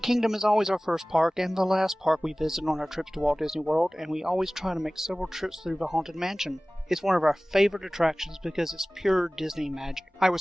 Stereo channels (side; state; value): both; normal; correlation 0.98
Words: Kingdom is always our first park and the last park we visit on our trips to Walt Disney World, and we always try to make several trips through the Haunted Mansion. It's one of our favorite attractions because it's pure Disney magic. I